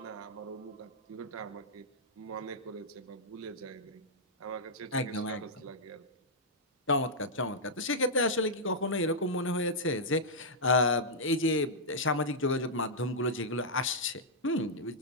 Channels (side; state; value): both; normal; correlation -0.09